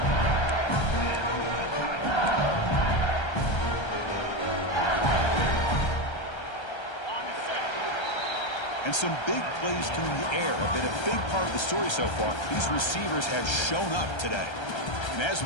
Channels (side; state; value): right; late; 1.3 ms